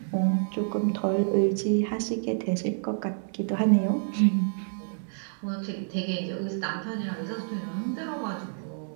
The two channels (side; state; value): left; silent; digital silence